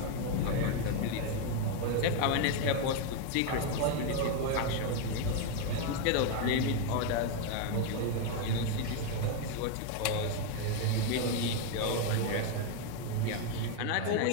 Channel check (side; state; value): both; different; correlation 0.01